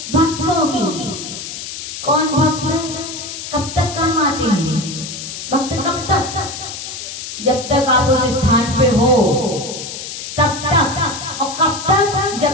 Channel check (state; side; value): noise; left; hiss, 8 dB below the sound